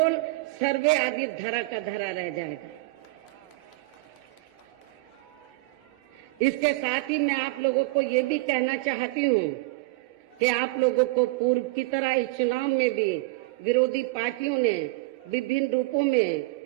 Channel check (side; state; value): left; quieter; 23.5 dB